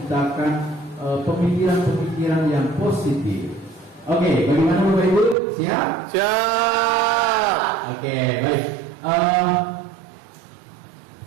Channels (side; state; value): left; drops out; at 5.4 s